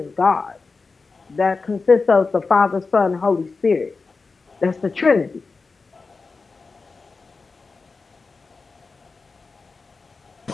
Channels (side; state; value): right; quieter; 4.3 dB